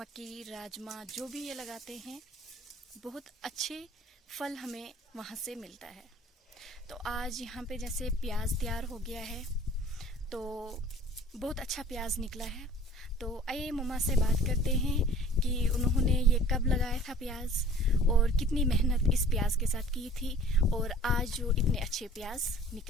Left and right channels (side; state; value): both; normal; correlation 0.49